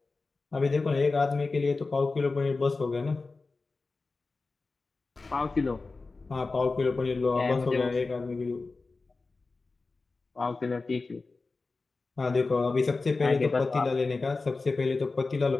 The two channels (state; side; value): quieter; right; 3.8 dB